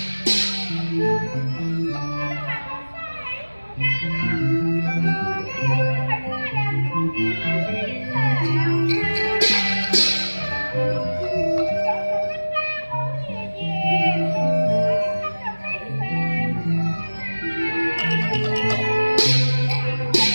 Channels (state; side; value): inverted; both; correlation -1.00